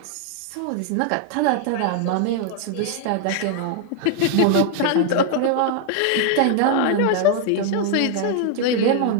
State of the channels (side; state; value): both; different; correlation 0.00